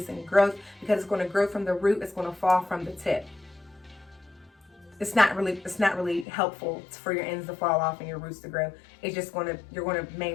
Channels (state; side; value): drops out; right; at 6.2 s